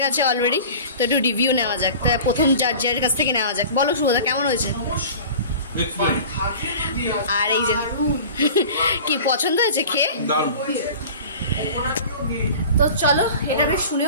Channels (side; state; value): both; inverted; correlation -0.40